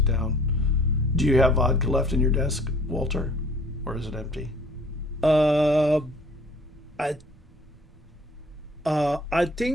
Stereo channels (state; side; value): normal; both; correlation 0.53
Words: down. Do you have vodka left in your desk, Walter? Or is it empty? I I